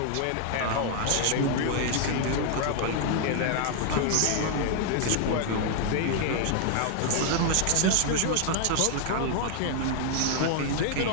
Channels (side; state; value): both; different; correlation 0.00